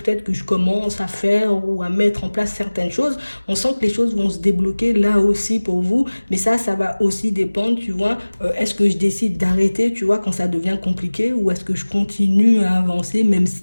que je commence à faire ou à mettre en place certaines choses. On sent que les choses vont se débloquer là aussi pour vous, mais ça va aussi dépendre, tu vois, est-ce que je décide d'arrêter, tu vois, quand ça devient compliqué, ou est-ce que je continue à avancer, même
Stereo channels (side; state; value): both; inverted; correlation -1.00